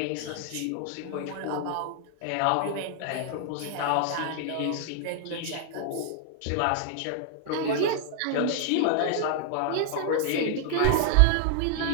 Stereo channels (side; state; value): both; different; correlation 0.00